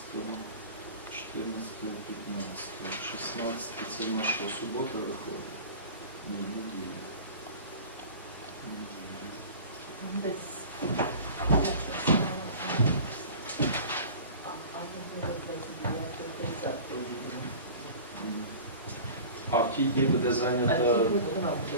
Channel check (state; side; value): inverted; both; correlation -0.38